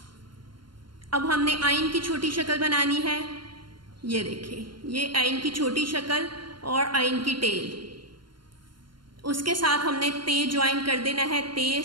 अब हमने आइन की छोटी शक्ल बनानी है, ये देखिए, ये आइन की छोटी शक्ल और आइन की टेल। उसके साथ हमने ते ज्वाइन कर देना है, ते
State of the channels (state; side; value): late; left; 0.72 ms